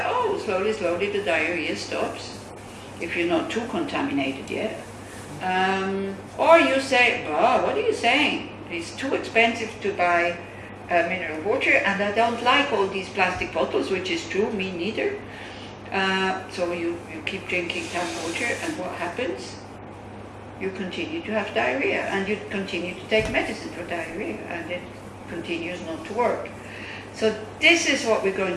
oh, slowly, slowly the diarrhea stops, if you're not too contaminated yet. Or you say, oh, what are you saying? It's too expensive to buy mineral water, and I don't like all these plastic bottles, which is true, me neither. So you keep drinking tap water, and what happens? You continue to have diarrhea, and you continue to take medicine for diarrhea, and it continues not to work. So this is what we're going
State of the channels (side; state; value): both; identical; correlation 1.00